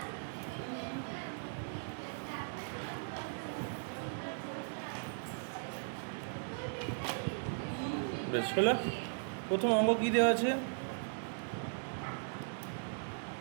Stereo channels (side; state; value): left; silent; digital silence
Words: বেশ হলো। প্রথম অঙ্ক কী দেওয়া আছে?